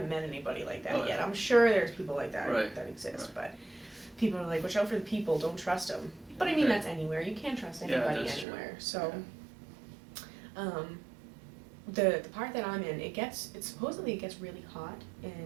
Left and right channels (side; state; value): left; drops out; at 8.5 s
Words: met anybody like that yet. Yeah. I'm sure there's people like that right. that exist, right. But people are like, watch out for the people, don't trust them. But I mean, that's anywhere. You can't trust anybody anywhere. True. So, yeah. The part that I'm in, it supposedly gets really hot